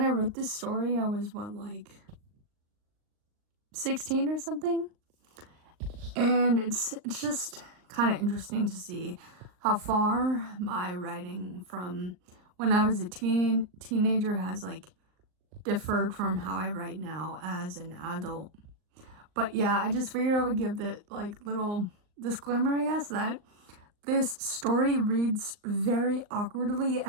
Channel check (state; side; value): late; left; 39 ms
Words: I wrote this story, I was 16 or something, and it's just kind of interesting to see how far my writing from when I was a teenager has differed from how I write now as an adult. But yeah, I just figured I would give the little disclaimer, I guess, that this story reads very awkwardly